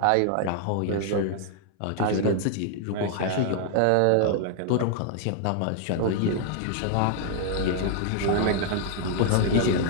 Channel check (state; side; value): different; both; correlation 0.00